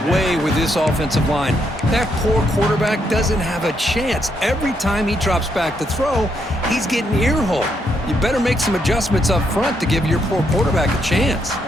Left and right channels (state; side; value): normal; both; correlation 0.77